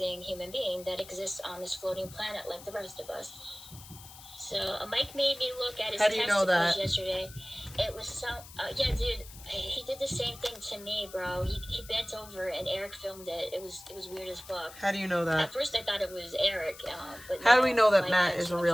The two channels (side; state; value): left; noise; hiss, 17 dB below the sound